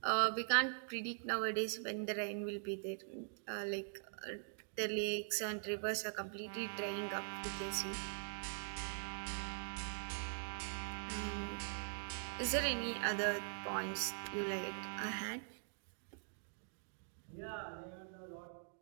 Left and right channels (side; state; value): left; silent; digital silence